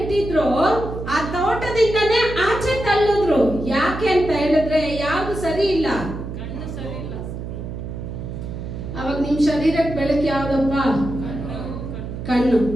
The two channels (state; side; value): noise; right; hum, 8 dB below the sound